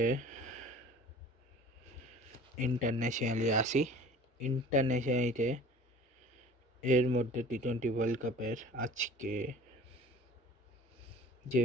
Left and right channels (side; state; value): both; normal; correlation 0.45